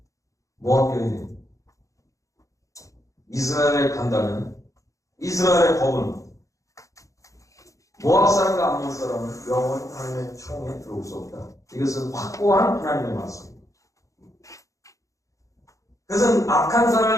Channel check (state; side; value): late; right; 0.16 ms